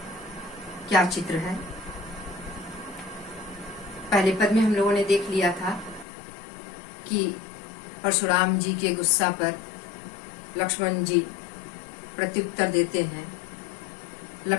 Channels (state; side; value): drops out; right; at 6.1 s